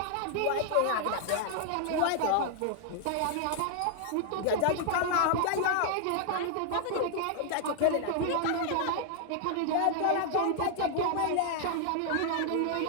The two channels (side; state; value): both; different; correlation -0.01